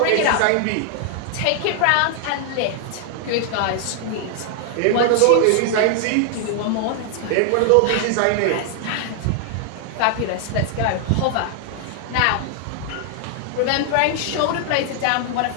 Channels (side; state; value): both; different; correlation 0.00